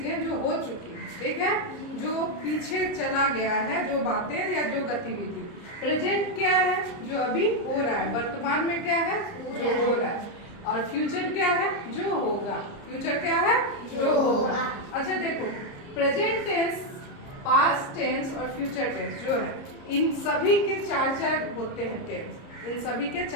जो हो चुकी है, ठीक है, जो पीछे चला गया है, जो बातें या जो गतिविधि। प्रेजेंट क्या है? जो अभी हो रहा है, वर्तमान में क्या है? जो हो रहा है। और फ्यूचर क्या है? जो होगा। फ्यूचर क्या है? जो होगा। अच्छा देखो, प्रेजेंट टेंस, पास्ट टेंस और फ्यूचर टेंस जो है, इन सभी के 4 होते हैं टेंस। इन सभी के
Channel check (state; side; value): late; right; 30 ms